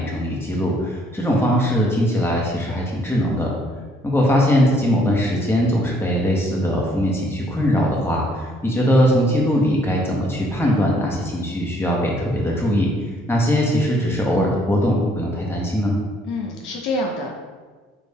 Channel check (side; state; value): both; normal; correlation 0.66